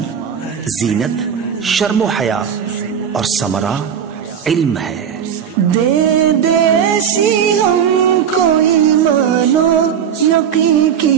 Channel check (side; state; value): left; quieter; 8.1 dB